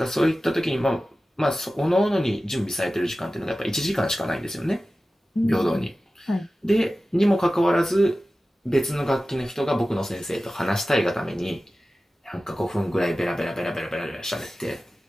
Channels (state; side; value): normal; both; correlation 0.95